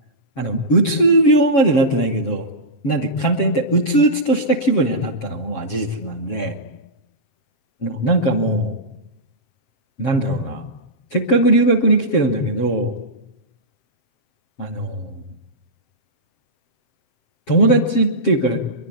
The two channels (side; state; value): right; late; 7.2 ms